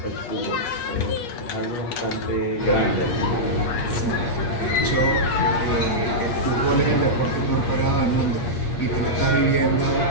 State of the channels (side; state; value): right; late; 8.3 ms